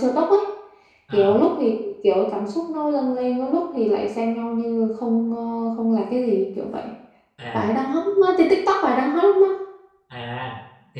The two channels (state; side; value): identical; both; correlation 1.00